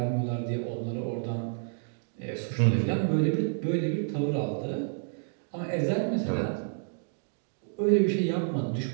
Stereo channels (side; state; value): left; silent; digital silence